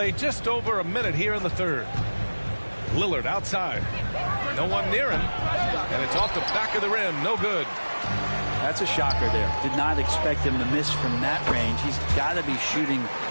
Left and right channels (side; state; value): both; inverted; correlation -1.00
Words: just over a minute here in the third. Lillard outside. No one near him. And it's off the back of the rim. No good. That's a shocker there. Did not expect him to miss from that range. He's got to be shooting